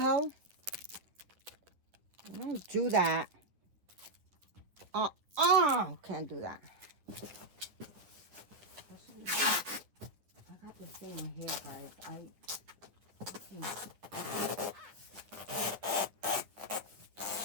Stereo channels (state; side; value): late; left; 10 ms